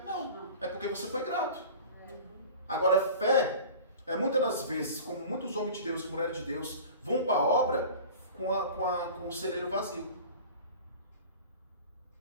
Não. É porque você foi grato. Agora, fé é muitas das vezes, como muitos homens de Deus e mulheres de Deus vão para a obra com o celeiro vazio.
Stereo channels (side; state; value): both; inverted; correlation -0.39